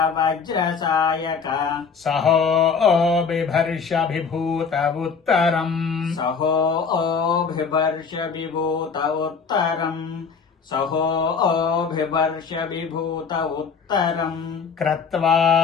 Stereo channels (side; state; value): right; quieter; 5.7 dB